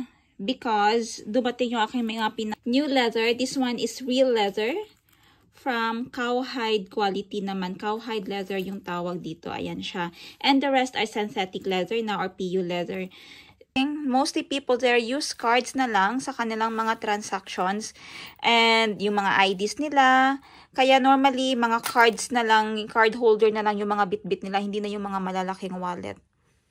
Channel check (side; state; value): both; identical; correlation 1.00